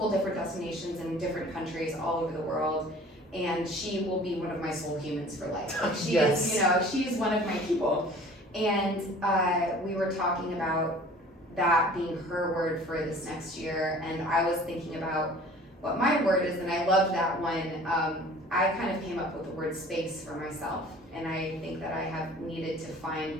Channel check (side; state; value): both; normal; correlation 0.47